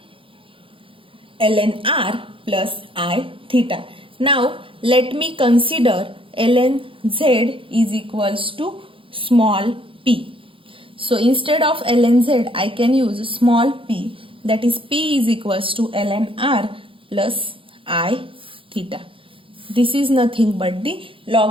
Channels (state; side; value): late; left; 0.25 ms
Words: ln r plus I theta. Now let me consider ln z is equals to small p. So instead of ln z, I can use small p, that is p is equals to ln r plus I theta. This is nothing but the